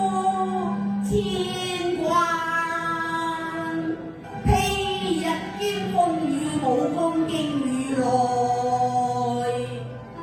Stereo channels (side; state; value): both; identical; correlation 1.00